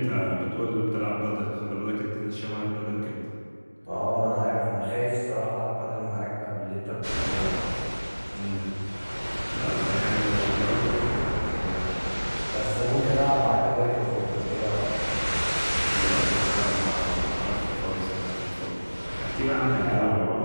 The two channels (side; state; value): both; inverted; correlation -1.00